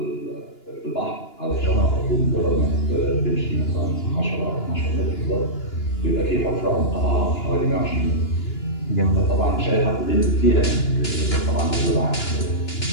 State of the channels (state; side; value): late; right; 2.9 ms